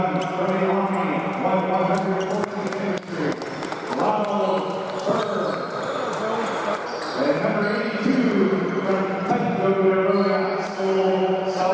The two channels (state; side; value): identical; both; correlation 1.00